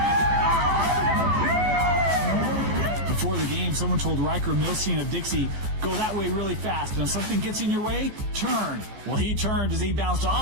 Before the game, someone told Riker Milstein of Dixie, go that way really fast, and if something gets in your way, turn. Well, he turned as he bounced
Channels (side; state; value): left; late; 14 ms